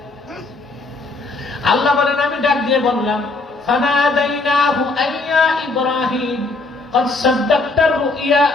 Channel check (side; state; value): right; quieter; 3.5 dB